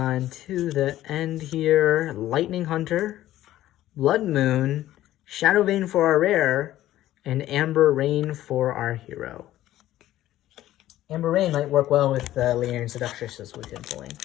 to the end here. Lightning Hunter, Blood Moon, Shadow Vein for our rare, and Amber Rain for our hero. Amber Rain might work well with the Laeran Seductress we've been pulling.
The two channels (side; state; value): right; quieter; 14.1 dB